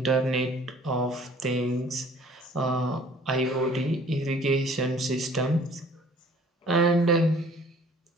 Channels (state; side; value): normal; both; correlation 0.53